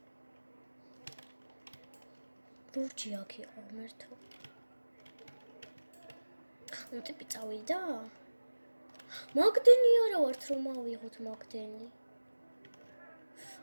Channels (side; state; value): both; inverted; correlation -1.00